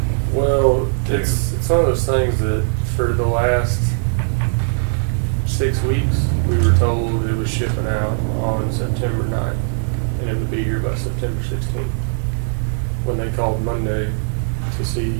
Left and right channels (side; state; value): left; silent; 60 dB below the other